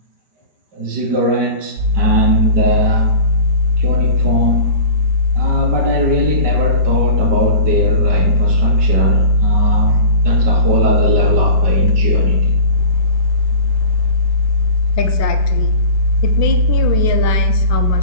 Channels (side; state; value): left; late; 5.2 ms